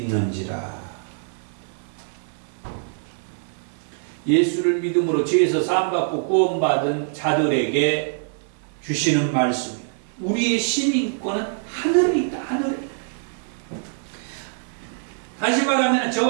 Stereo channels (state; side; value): silent; left; digital silence